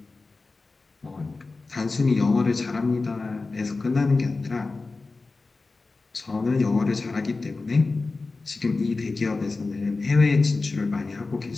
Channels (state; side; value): quieter; right; 3.7 dB